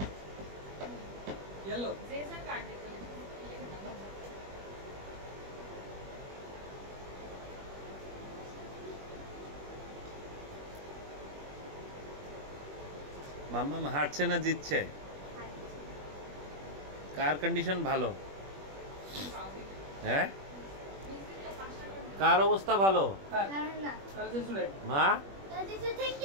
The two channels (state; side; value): late; left; 21 ms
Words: yellow जेसा card देखो মাম্মাম হারছে না জিতছে? কার কন্ডিশন ভালো? হ্যাঁ, কার অবস্থা ভালো? মা,